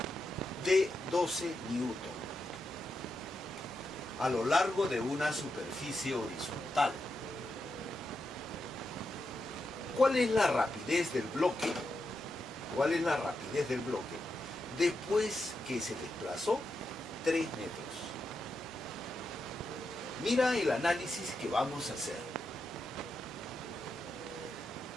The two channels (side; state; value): both; normal; correlation 0.86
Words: de 12 newton a lo largo de una superficie horizontal. ¿Cuál es la rapidez del bloque? ¿Cuál es la rapidez del bloque después que se desplazó 3 metros? Mira el análisis que vamos a hacer.